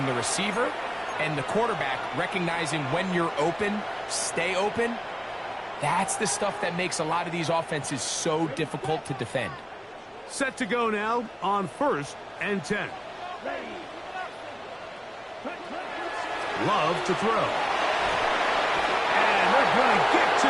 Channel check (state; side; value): identical; both; correlation 1.00